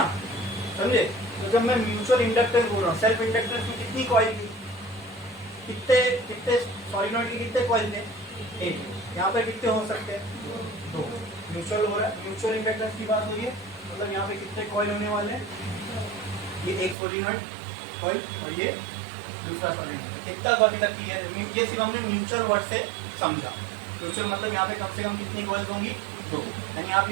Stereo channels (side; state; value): left; drops out; at 16.9 s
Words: समझे। तो जब मैं म्यूचुअल इंडक्टेंस बोल रहा हूँ, सेल्फ इंडक्टेंस में कितनी कॉइल थी, कितने सॉलिनॉइड के कितने कॉइल थे, एक। यहाँ पे कितने हो सकते हैं, दो। म्यूचुअल हो रहा है, म्यूचुअल इंडक्टेंस की बात हो रही है, मतलब यहाँ पे कितने कॉइल होने वाले हैं, ये एक सॉलिनॉइड कॉइल और ये दूसरा सॉलिनॉइड। इतना तो अभी तक क्लियर है। ये सिर्फ हमने म्यूचुअल वर्ड से समझा। म्यूचुअल मतलब यहाँ पे कम से कम कितनी कॉइल्स होंगी, दो। यानी आप